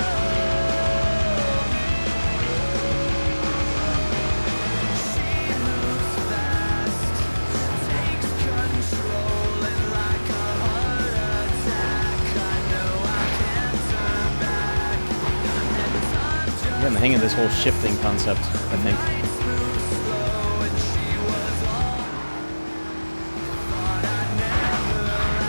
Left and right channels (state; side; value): inverted; both; correlation -1.00